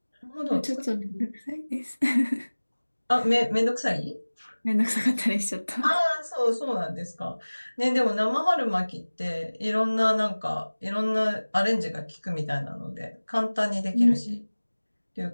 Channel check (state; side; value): inverted; both; correlation -1.00